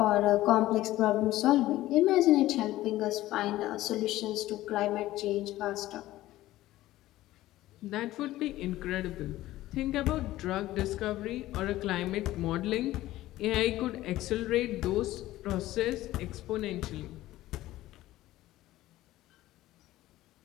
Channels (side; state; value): right; quieter; 15.8 dB